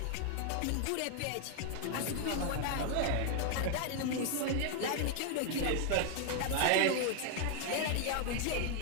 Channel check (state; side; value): different; both; correlation 0.00